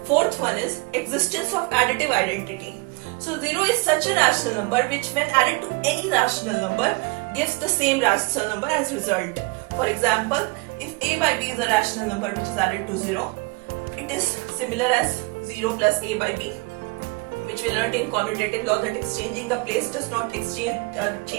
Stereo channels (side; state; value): left; quieter; 28.4 dB